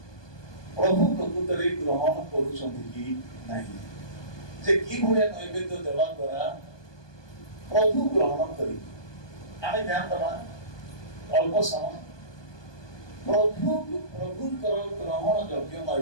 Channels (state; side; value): late; right; 1.2 ms